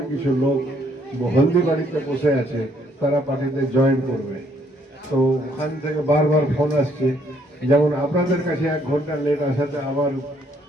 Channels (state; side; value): normal; both; correlation 0.67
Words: কিছু লোক হলদিবাড়িতে বসে আছে, তারা পার্টিতে জয়েন করবে। তো ওখান থেকে বারবার ফোন আসছে, যেমন আপনাদের কাছে 1 ঘন্টা লেট আসাতে আমার